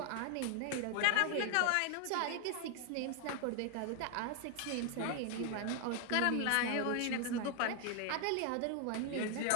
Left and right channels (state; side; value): different; both; correlation 0.00